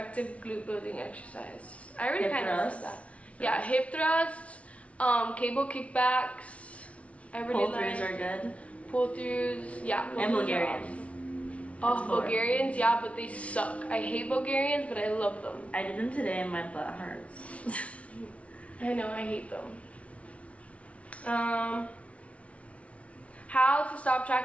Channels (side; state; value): right; late; 0.064 ms